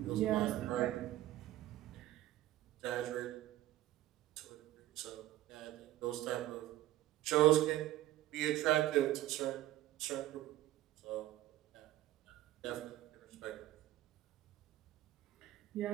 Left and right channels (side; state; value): left; quieter; 14.8 dB